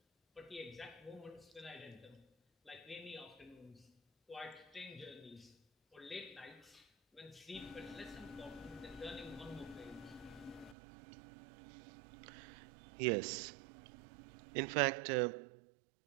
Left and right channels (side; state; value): left; drops out; at 10.8 s